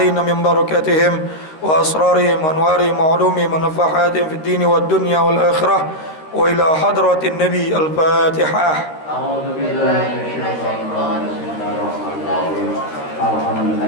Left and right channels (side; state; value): right; late; 13 ms